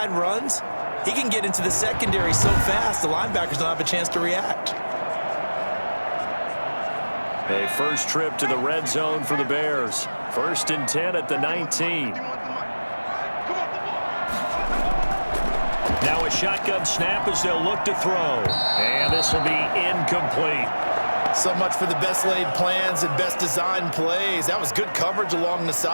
runs, he can get into the secondary so fast the linebackers don't have a chance to react. A first trip to the red zone for the Bears. 1st and 10 at the 19. Now a shotgun snap as they'll look to throw. And this will be incomplete. So much for the best laid plans and best designed plays. That was good coverage along the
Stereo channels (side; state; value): both; inverted; correlation -1.00